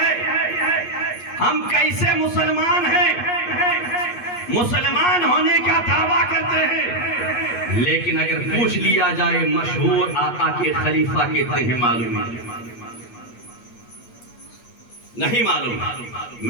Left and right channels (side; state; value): right; late; 8.3 ms